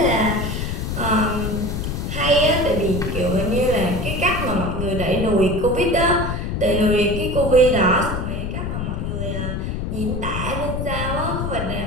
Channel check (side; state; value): left; noise; rumble, 3 dB below the sound